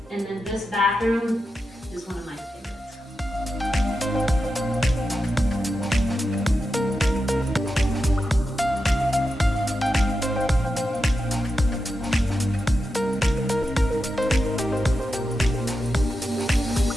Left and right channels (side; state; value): both; normal; correlation 0.89